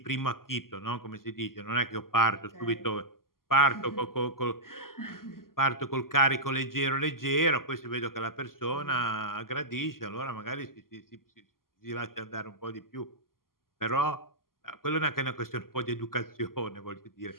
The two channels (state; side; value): late; right; 0.92 ms